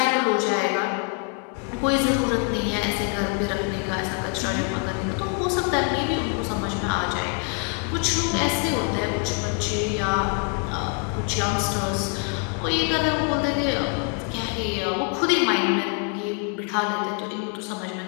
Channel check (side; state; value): right; quieter; 38.4 dB